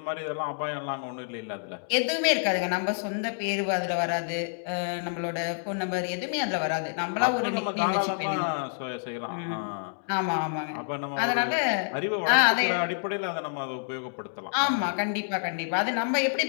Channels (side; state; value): right; silent; digital silence